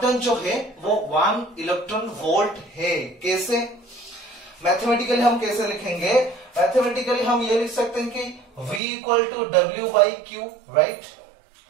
डन जो है वो 1 इलेक्ट्रॉन वोल्ट है। कैसे, मैथमेटिकली हम कैसे लिखेंगे, मैथमेटिकली हम ये लिख सकते हैं कि V equal to W by q, right.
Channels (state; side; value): drops out; left; at 8.8 s